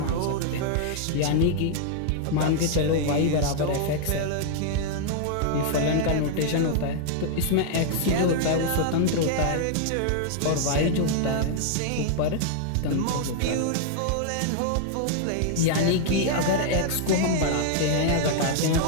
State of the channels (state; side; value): different; both; correlation -0.01